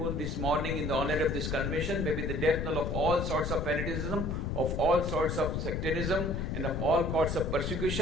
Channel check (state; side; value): noise; left; rumble, 2 dB below the sound